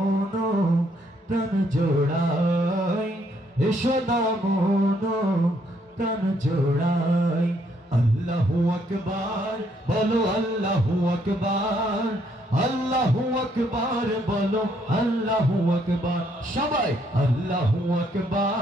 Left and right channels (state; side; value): normal; both; correlation 0.70